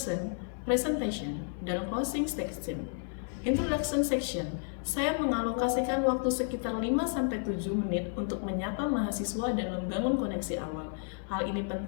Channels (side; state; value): right; silent; 57 dB below the other